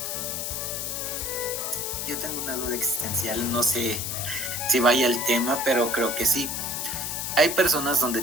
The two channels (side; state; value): left; noise; hiss, 3 dB below the sound